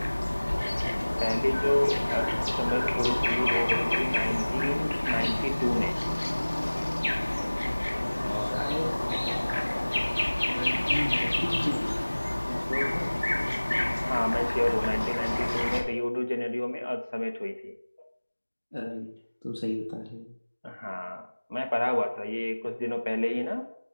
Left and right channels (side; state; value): both; inverted; correlation -1.00